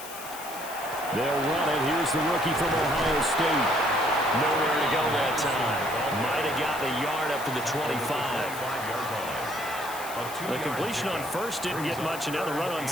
They'll run it. Here's the rookie from Ohio State. Nowhere to go that time. Might have gotten a yard up to the 25. The completion on first didn't get much, and now the run on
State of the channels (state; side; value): noise; left; hiss, 12 dB below the sound